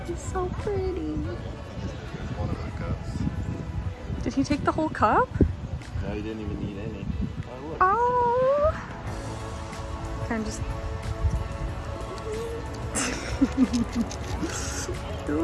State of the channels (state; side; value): identical; both; correlation 1.00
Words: So pretty. One of the cups. Did he take the whole cup? No, he didn't even need any. Oh, look. Oh. Kind of just. It